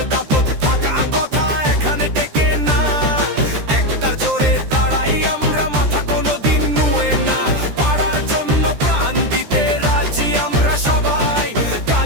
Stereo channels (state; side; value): late; left; 13 ms